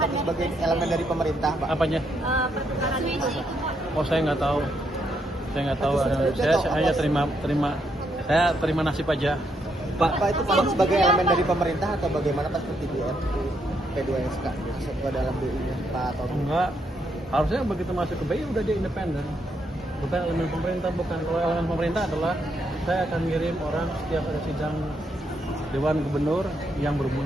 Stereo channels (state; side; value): normal; both; correlation 0.77